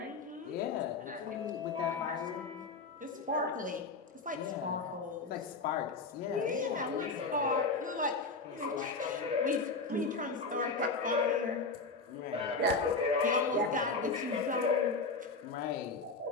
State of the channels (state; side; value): quieter; right; 4.0 dB